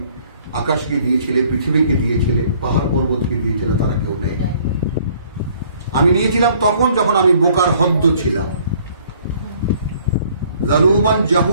আকাশকে দিয়েছিলে, পৃথিবীকে দিয়েছিলে, পাহাড় পর্বতকে দিয়েছিলে, তারা কেউ নেই। আমি নিয়েছিলাম তখন যখন আমি বোকার হদ্দ ছিলাম, জালুমান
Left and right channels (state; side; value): inverted; both; correlation -0.59